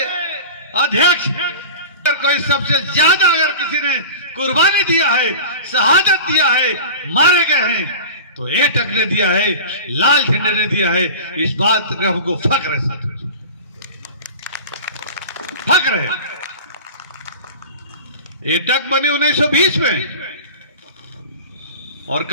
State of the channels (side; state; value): both; inverted; correlation -0.34